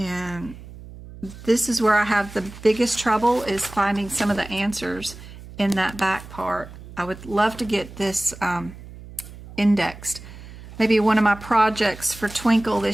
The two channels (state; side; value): noise; right; hum, 16 dB below the sound